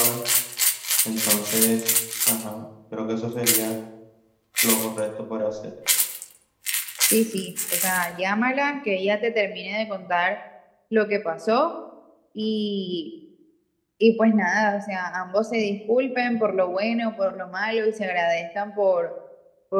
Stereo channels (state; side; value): identical; both; correlation 1.00